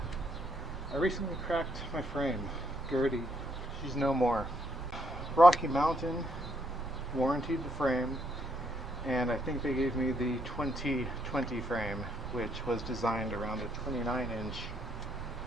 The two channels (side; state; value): both; normal; correlation 0.73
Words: recently cracked my frame. Gertie, she's no more. Rocky Mountain warrantied the frame, and I think they gave me the 2020 frame, which was designed around a 29-inch